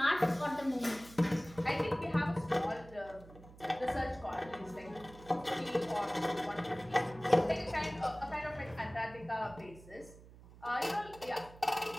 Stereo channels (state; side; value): noise; right; hum, 20 dB below the sound